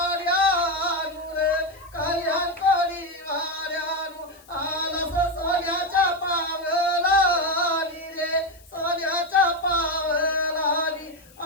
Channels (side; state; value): left; noise; hiss, 26 dB below the sound